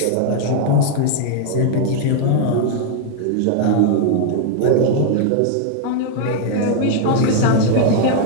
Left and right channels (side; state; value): both; different; correlation 0.00